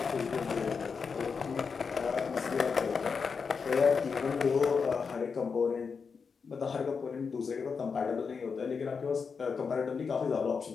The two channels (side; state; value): right; quieter; 5.5 dB